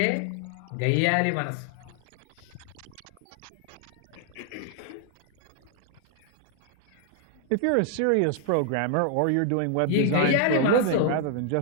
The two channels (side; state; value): both; different; correlation 0.00